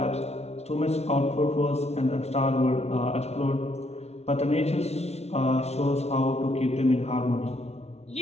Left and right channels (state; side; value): late; right; 0.31 ms